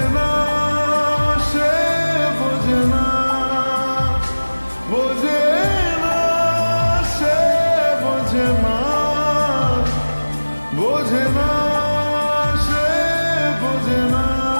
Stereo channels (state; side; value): inverted; both; correlation -1.00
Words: না সে, বোঝে না, বোঝে না সে, বোঝে না, বোঝে না সে, বোঝে না,